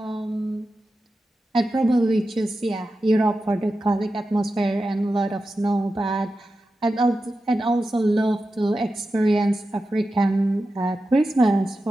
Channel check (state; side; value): normal; both; correlation 0.91